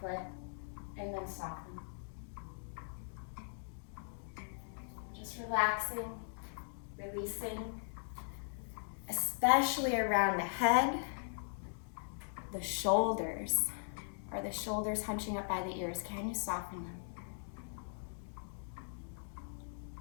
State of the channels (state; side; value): silent; right; digital silence